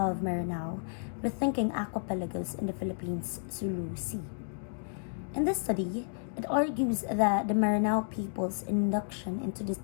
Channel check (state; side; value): silent; right; digital silence